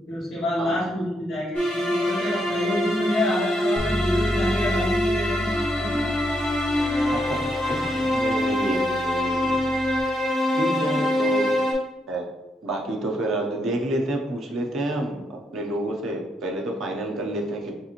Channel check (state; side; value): normal; both; correlation 0.78